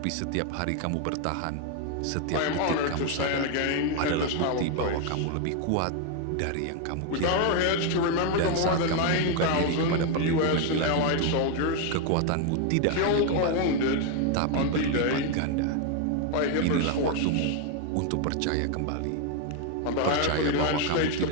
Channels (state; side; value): different; both; correlation 0.01